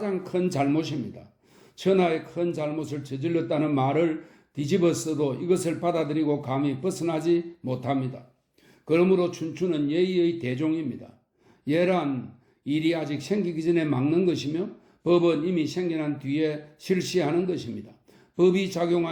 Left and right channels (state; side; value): identical; both; correlation 1.00